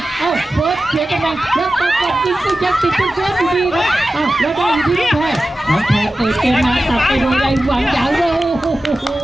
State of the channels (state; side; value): normal; both; correlation 0.94